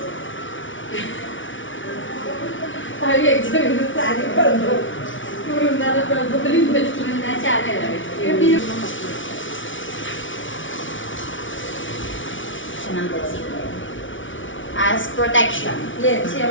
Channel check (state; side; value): late; right; 0.56 ms